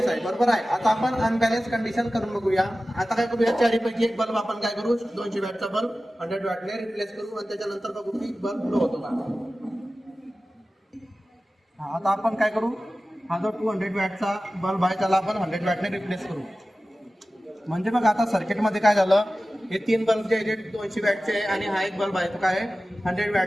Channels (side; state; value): both; normal; correlation 0.95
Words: आहे, बरोबर आहे. आता आपण अनबॅलेन्स कंडिशन करून बघूया. आता काय करूया, 4ही पैकी एक बल्ब आपण काय करू, 200 वॅटचा बल्ब 100 वॅटने रिप्लेस करू आणि त्याच्यानंतर बघू की बल्ब ग्लो होतो का. आता आपण काय करू, हा जो 200 वॅटचा बल्ब आहे त्याला आपण 100 वॅटने रिप्लेस करू. म्हणजे बघा आता सर्किटमध्ये काय झालं, हे 3 बल्ब जे 200 वॅटचे आहे आणि हा एक बल्ब आहे तो काय 100